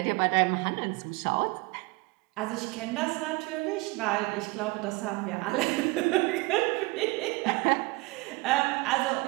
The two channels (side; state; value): left; quieter; 24.4 dB